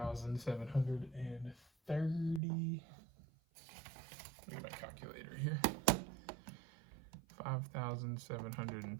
Look at my calculator here.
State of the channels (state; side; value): drops out; left; at 2.4 s